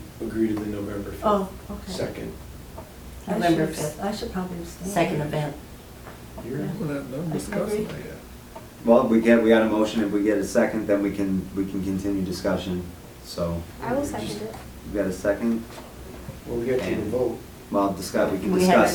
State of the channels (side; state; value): both; identical; correlation 1.00